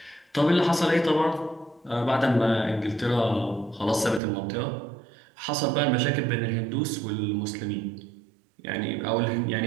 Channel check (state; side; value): drops out; left; at 4.2 s